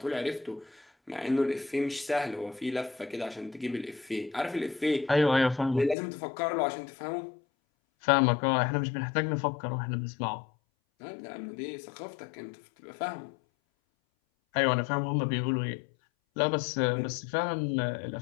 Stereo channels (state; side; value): drops out; right; at 6.0 s